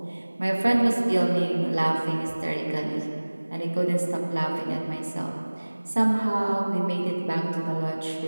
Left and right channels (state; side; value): inverted; both; correlation -1.00